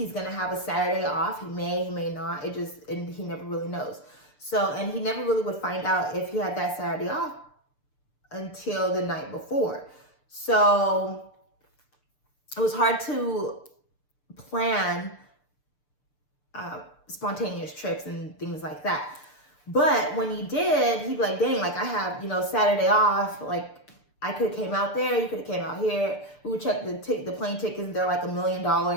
gonna have a Saturday off. He may not. And he never really knows. So, and he never really would find out if he had that Saturday off until the night before. So it was hard to plan spontaneous trips and things like that. But when he did, he'd be like, dang, like I have, Saturday off, like I could have came out there, you could have came out here. We would check the plane tickets, and they're like $1 million,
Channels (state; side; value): late; right; 6.8 ms